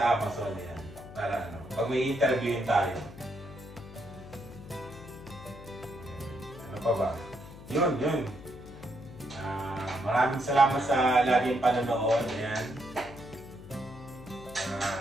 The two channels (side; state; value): left; noise; hum, 16 dB below the sound